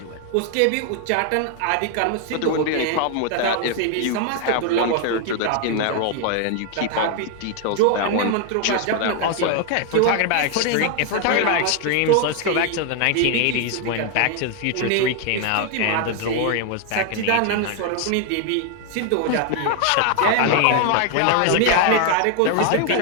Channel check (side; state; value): both; different; correlation 0.00